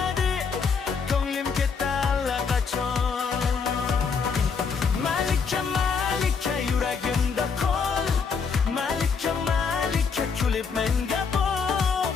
ko'nglim ketdi allaqachon. Malika, Malika, yuragimda qol. Malika, Malika, kulib menga boq.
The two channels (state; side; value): quieter; right; 5.6 dB